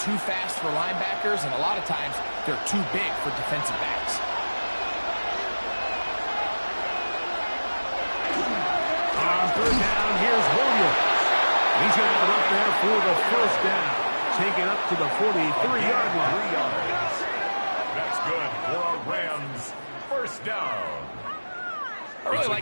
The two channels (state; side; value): inverted; both; correlation -1.00